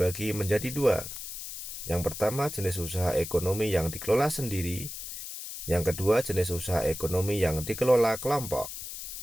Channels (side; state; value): left; noise; hiss, 9 dB below the sound